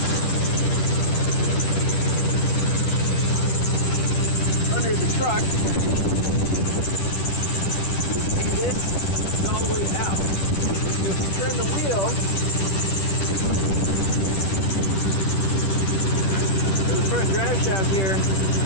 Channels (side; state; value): right; late; 10 ms